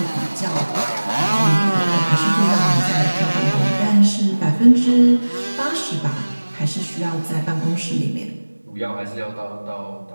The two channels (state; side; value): inverted; both; correlation -1.00